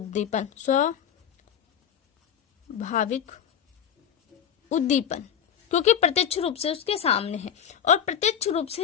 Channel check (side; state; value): right; quieter; 8.7 dB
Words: स्वाभाविक उद्दीपन, क्योंकि प्रत्यक्ष रूप से उसके सामने है। और प्रत्यक्ष रूप